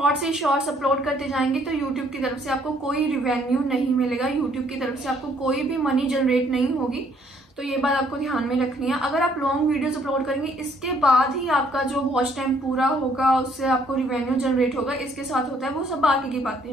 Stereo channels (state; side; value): normal; both; correlation 0.65